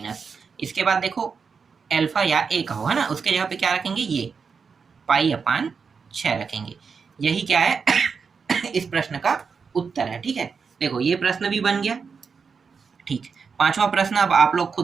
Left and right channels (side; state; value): left; quieter; 5.6 dB